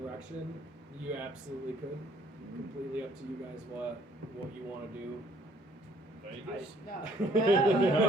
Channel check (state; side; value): normal; both; correlation 0.62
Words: you absolutely could. Completely up to you guys what you want to do. Vegas? No.